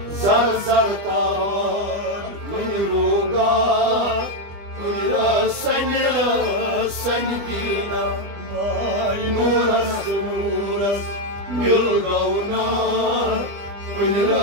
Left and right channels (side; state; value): left; late; 24 ms